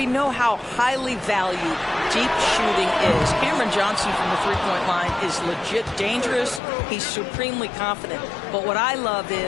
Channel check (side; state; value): right; drops out; at 6.6 s